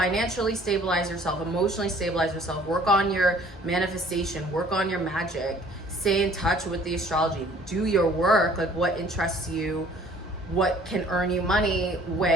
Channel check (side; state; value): both; normal; correlation 0.54